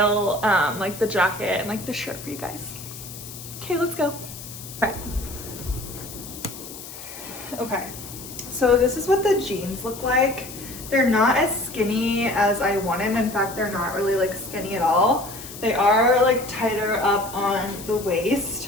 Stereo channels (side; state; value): left; noise; hiss, 13 dB below the sound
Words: like the jacket and like the shirt for you guys. Okay, let's go. All right. Okay, so this is what the jeans look like. They're not as skinny as I wanted. In fact, they're not really like skinny at all. They are like tighter up on the